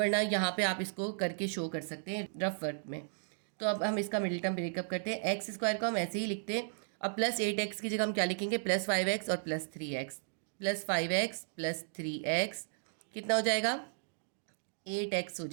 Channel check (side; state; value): left; silent; digital silence